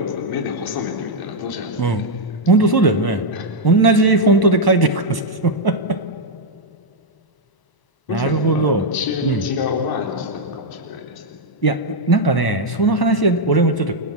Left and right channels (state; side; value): late; right; 1.0 ms